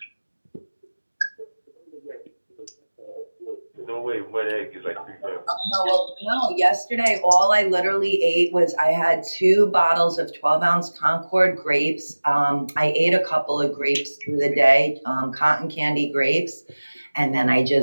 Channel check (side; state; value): both; inverted; correlation -1.00